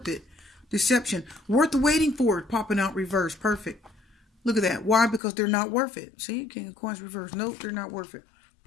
it. Deception. Worth the waiting for it. Popping out reverse. Perfect. Look at that. Why? Because they're not worth it. See? King of Coins reverse. Nope, they're not worth it.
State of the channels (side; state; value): right; drops out; at 5.2 s